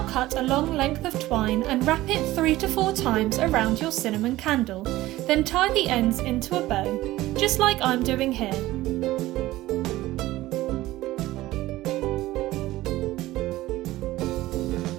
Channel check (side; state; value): left; quieter; 16.9 dB